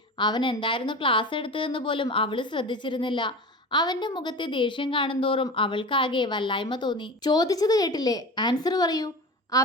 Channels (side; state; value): both; normal; correlation 0.31